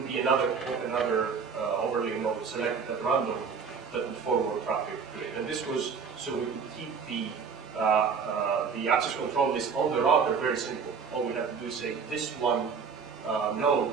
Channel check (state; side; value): quieter; left; 6.0 dB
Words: be another overlay node selected at random that would forward traffic to it. And this was so we could keep the access control list on the router very simple. All we have to do is say this one node